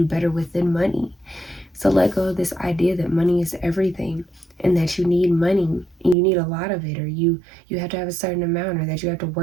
better with than money. So let go of this idea that money is everything and that you need money and you need a lot of it, or you have to have a certain amount, or that you have to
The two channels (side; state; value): left; drops out; at 6.2 s